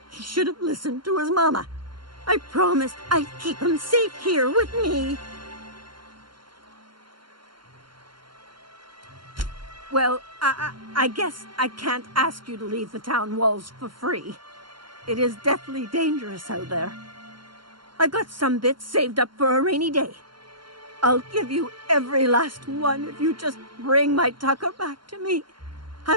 He should have listened to his mama. I promised I'd keep him safe here with me. Well, I guess I can't ask you to leave the town walls for free. It is deathly dangerous out there. I've got some bits saved up for a rainy day. I'll give you every last one if you just bring my Tucker back to me.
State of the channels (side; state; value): left; late; 0.73 ms